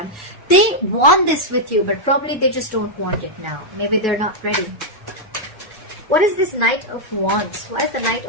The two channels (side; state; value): both; normal; correlation -0.04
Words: They want this with you, but probably they just don't want it now. Maybe they're not ready. What is this Knight of Wands? Why is the Knight